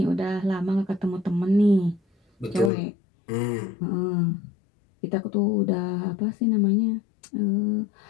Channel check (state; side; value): drops out; right; at 2.7 s